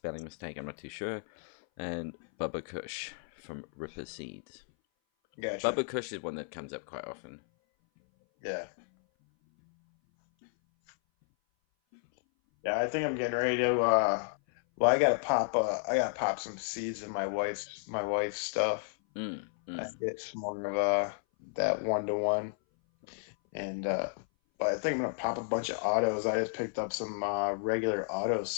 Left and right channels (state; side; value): silent; right; 56 dB below the other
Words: mistake. I'm not too sure. And Bubba Kush from Ripper Seeds. Gotcha. Bubba Kush is one that comes up quite often. Yeah. Yeah, I think I'm getting ready to. Well, I gotta pop some seeds in my wife's stuff. I get some more of that 1-to-1, and but I think I'm gonna pop a bunch of autos. I just picked up some regular auto